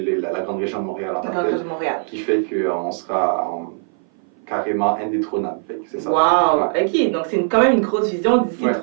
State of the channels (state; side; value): silent; left; 58 dB below the other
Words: la grande région de Montréal en tant que telle, qui fait qu'on sera carrément indétrônable. C'est ça. Wow! Ouais. OK, donc c'est quand même une grosse vision d'ici